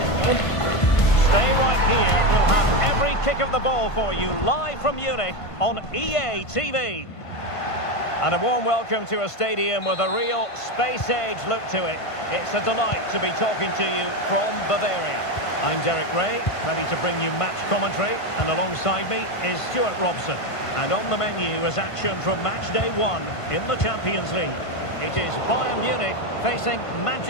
Stay right here. We'll have every kick of the ball for you live from Munich on EA TV. And a warm welcome to a stadium with a real space-age look to it. It's a delight to be talking to you from Bavaria. I'm Derek Ray, ready to bring you match commentary, and alongside me is Stuart Robson. And on the menu is action from match day 1 in the Champions League. It is Bayern Munich facing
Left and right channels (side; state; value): right; late; 1.5 ms